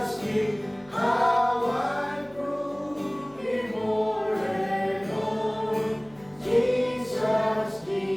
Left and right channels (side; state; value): left; noise; hum, 27 dB below the sound